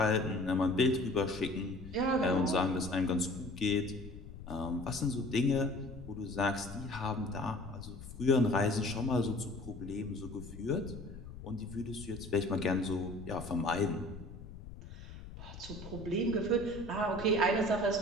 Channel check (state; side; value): noise; left; rumble, 13 dB below the sound